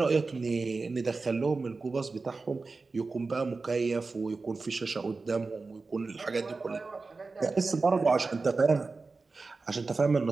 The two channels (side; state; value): left; quieter; 4.0 dB